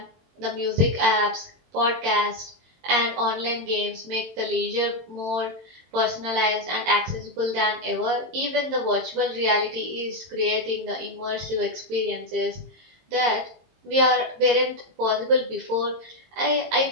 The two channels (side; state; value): left; late; 22 ms